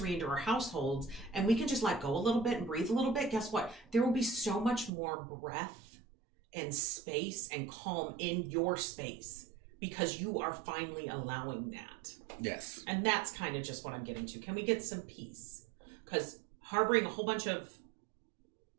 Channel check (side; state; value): left; drops out; at 4.9 s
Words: into our households, and we can just let go a little bit and breathe a little bit, guess what? There will be so much more breath and space and calm in your space, because you are finally allowing that. Yes. And that's kind of just what I'm getting to. Can we get some peace? Because harboring a whole bunch of